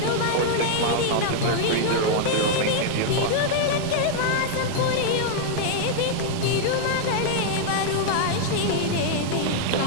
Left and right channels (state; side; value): different; both; correlation -0.01